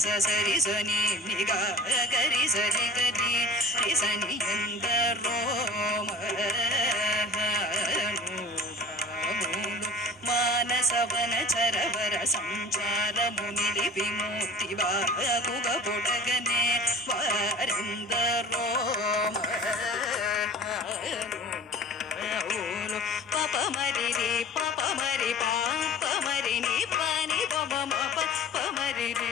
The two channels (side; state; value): both; normal; correlation 0.41